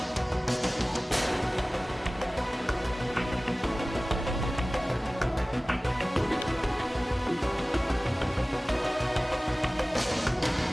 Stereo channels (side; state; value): both; normal; correlation 0.98